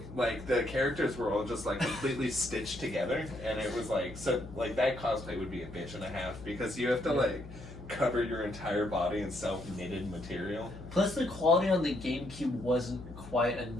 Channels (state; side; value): noise; left; hum, 14 dB below the sound